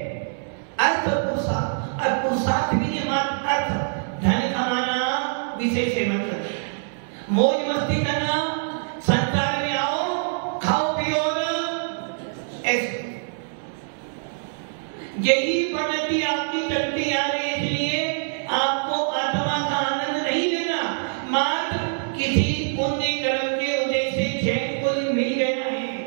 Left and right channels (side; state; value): left; silent; 60 dB below the other